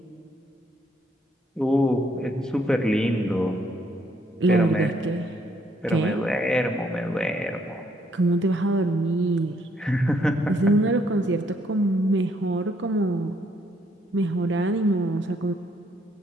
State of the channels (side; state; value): both; normal; correlation 0.70